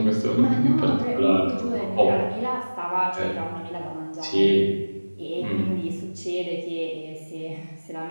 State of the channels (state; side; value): inverted; both; correlation -1.00